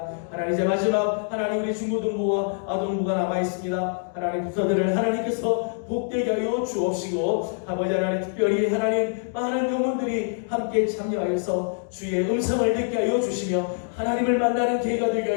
하나님 이제 마지막 하나님 우리 중고등부와 아동부가 남아있습니다. 하나님 부서들을 하나님께서 복되게 하여 주옵시고 아버지 하나님 특별히 하나님 많은 영혼들이 함께 참여하여서 주의 음성을 듣게 하여 주시며 하나님을 만나는 기회가 되게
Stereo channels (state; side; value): silent; right; digital silence